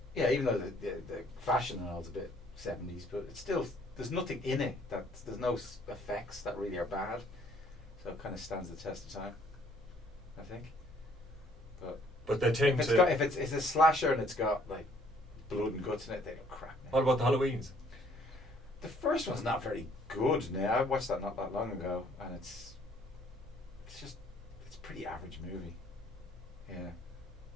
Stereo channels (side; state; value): both; normal; correlation 0.61